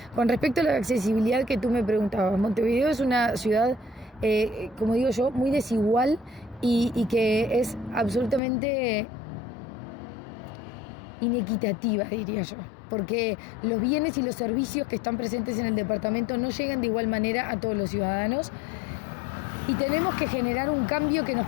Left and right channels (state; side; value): drops out; right; at 8.4 s